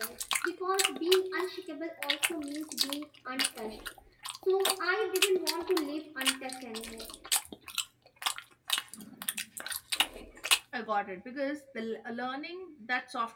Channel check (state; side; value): identical; both; correlation 1.00